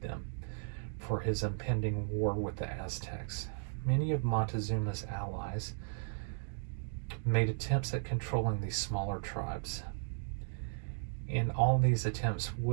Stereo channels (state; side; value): silent; left; digital silence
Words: them for his impending war with the Aztecs. Many of Montezuma's allies made attempts at controlling these smaller tribes, and all these attempts